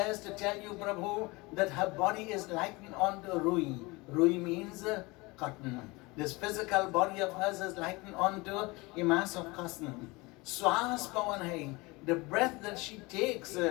to tell you, Prabhu, that her body is likened onto Rui. Rui means cotton. This physical body of hers is likened onto a mass of cotton. Swas Pavan hai. The breath that she takes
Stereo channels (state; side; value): quieter; right; 24.1 dB